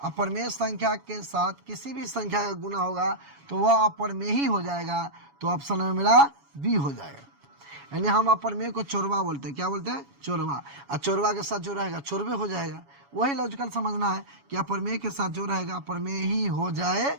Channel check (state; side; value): late; left; 7.1 ms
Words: संख्या के साथ किसी भी संख्या का गुना होगा तो वह अपरमेय ही हो जाएगा। तो ऑप्शन में मेरा बी हो जाएगा। यानी हम अपरमेय को चोरवा बोलते हैं। क्या बोलते हैं? चोरवा। और चोरवा के साथ जो रहेगा चोरवे हो जाएगा। वही लॉजिकल समझना है कि अपरमेय के साथ जो रहेगा अपरमेय ही हो